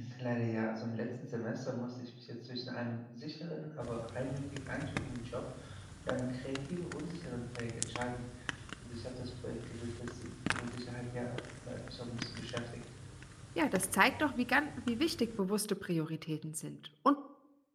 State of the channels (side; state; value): both; identical; correlation 1.00